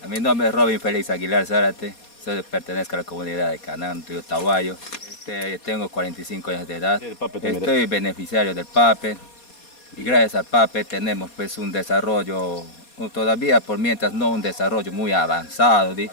Mi nombre es Robin Félix Aguilar Zárate, pertenezco a la comunidad de Canaán, Río Tahuayo. Tengo 45 años de edad, estoy beneficiario del PAPE y gracias al PAPE tenemos pues un desarrollo, todavía por mientras no un desarrollo muy avanzado,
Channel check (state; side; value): late; right; 4.2 ms